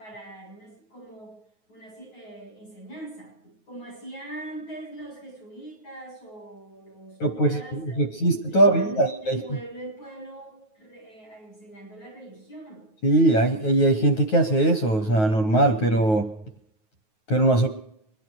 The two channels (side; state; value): right; late; 9.3 ms